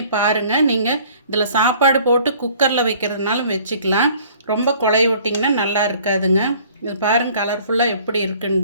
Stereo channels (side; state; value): both; inverted; correlation -0.53